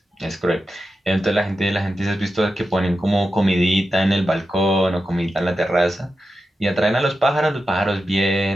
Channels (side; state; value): both; normal; correlation 0.90